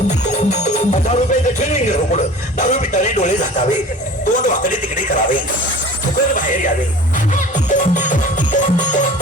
₹10 ट्रेनिंग घेऊ पुढं, दारू पिताने डोळे झाकावे, तोंड वाकडे तिकडे करावे, फुकट बाहेर यावे,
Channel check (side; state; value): both; normal; correlation 0.42